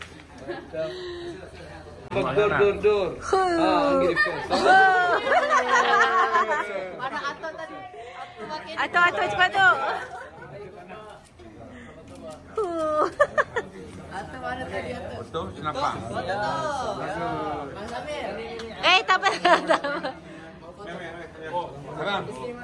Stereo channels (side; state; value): both; identical; correlation 1.00